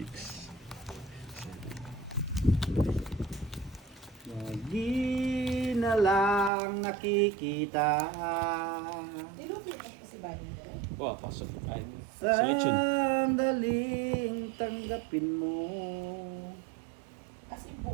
7. Lagi na lang nakikita Nilupit pa si Bayan ni Derek. Wow, pasok. Ay, selection. sandaling tanggapin mo. As in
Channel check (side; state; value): left; drops out; at 6.5 s